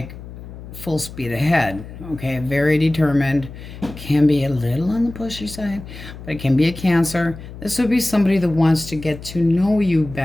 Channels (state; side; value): noise; left; hum, 14 dB below the sound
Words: full speed ahead, okay? Very determined. Can be a little on the pushy side, but it can be a Cancer. This would be somebody that wants to get to know you